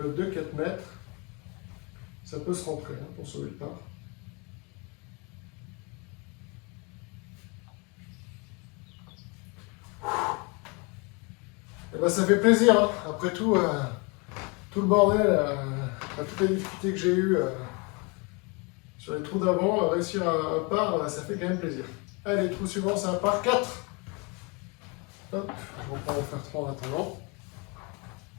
de 4 mètres. Ça peut se rentrer hein, pour sauver le par. Et ben ça fait plaisir, hein. Après tout, tout le bordel, toutes les difficultés que j'ai eues sur les trous d'avant, réussir un par, ça fait quand même plaisir. Allez, trou suivant, c'est un par 4. Hop, je reprends mon fer 3 en attendant.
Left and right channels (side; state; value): right; quieter; 30.4 dB